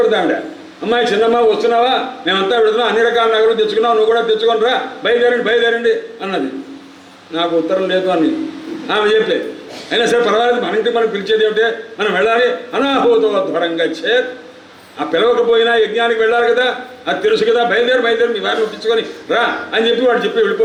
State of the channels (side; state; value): both; identical; correlation 1.00